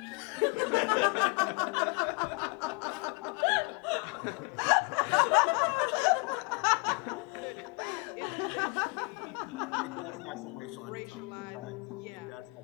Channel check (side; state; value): right; quieter; 32.3 dB